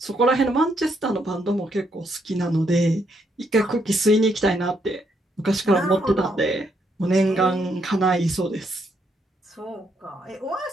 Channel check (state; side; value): normal; both; correlation 0.75